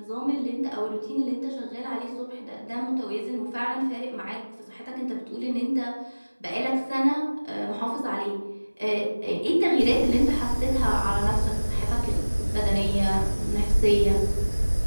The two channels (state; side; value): inverted; both; correlation -1.00